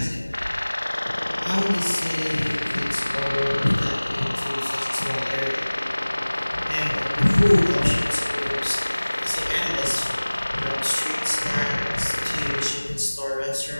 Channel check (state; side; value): inverted; both; correlation -1.00